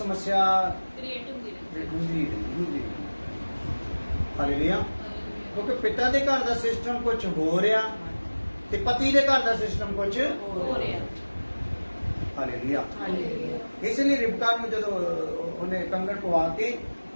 ਕ੍ਰੀਏਟ ਹੁੰਦੀ। ਹਾਲੇਲੂਇਆ। ਕਿਉਂਕਿ ਪਿਤਾ ਦੇ ਘਰ ਦਾ ਸਿਸਟਮ ਕੁਝ ਹੋ ਰਿਹਾ ਤੇ ਪਤੀ ਦੇ ਘਰ ਦਾ ਸਿਸਟਮ ਕੁਝ ਹੋ ਰਿਹਾ। ਹਾਲੇਲੂਇਆ। ਇਸ ਲਈ ਰਿਬਕਾ ਨੂੰ ਜਦੋਂ ਉਹਨੇ ਕੰਗਣ ਪਵਾ ਕੇ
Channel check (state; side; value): inverted; both; correlation -1.00